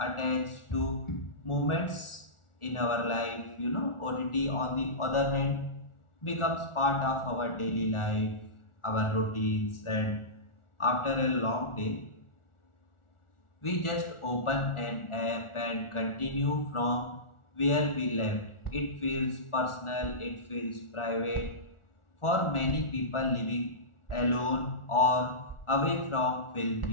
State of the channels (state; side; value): late; right; 1.4 ms